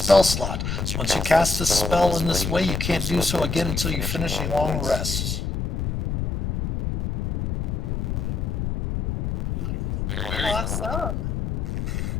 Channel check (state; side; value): noise; left; rumble, 1 dB below the sound